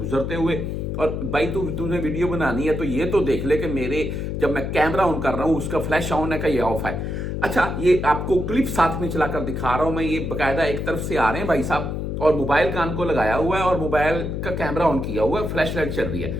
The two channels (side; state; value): left; noise; hum, 3 dB below the sound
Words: हुए। और भाई तुझे वीडियो बनानी है तो ये तो देख ले कि मेरे जब मैं कैमरा ऑन कर रहा हूं उसका फ्लैश ऑन है का ये ऑफ है। अच्छा, ये आपको क्लिप साथ में चलाकर दिखा रहा हूं मैं। ये बकायदा एक तरफ से आ रहे हैं भाई साहब और मोबाइल कान को लगाया हुआ है और मोबाइल का कैमरा ऑन किया हुआ है, फ्लैश लाइट चल रही है